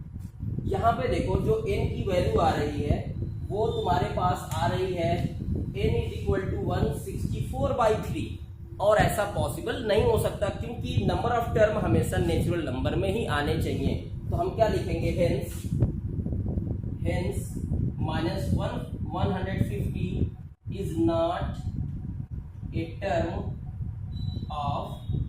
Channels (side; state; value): both; identical; correlation 1.00